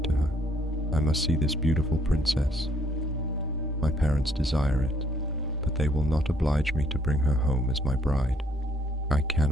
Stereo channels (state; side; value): normal; both; correlation 0.67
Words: to her. I must see this beautiful princess. My parents desire it, but they will not oblige me to bring her home as my bride. I